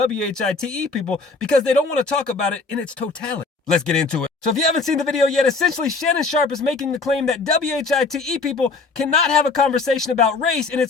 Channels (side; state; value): right; quieter; 4.0 dB